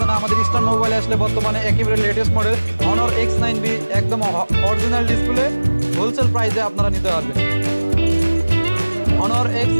না, আমাদের ইস্টার্ন মোবাইলে আসলে বর্তমানে একেবারে লেটেস্ট মডেল Honor X9B একদম অরিজিনাল ডিসপ্লে হোলসেল প্রাইসে আপনারা নিতে পারবেন। Honor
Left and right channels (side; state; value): both; inverted; correlation -1.00